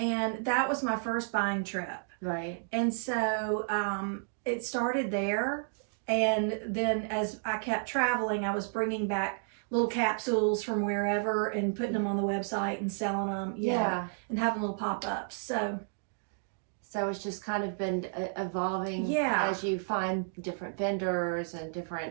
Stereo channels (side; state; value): left; silent; digital silence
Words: that was my first buying trip. Right. And so it started there. And then as I kept traveling, I was bringing back little capsules from wherever and putting them on the website and selling them. And having little pop-ups. So it's just kind of been evolving as you find different vendors and different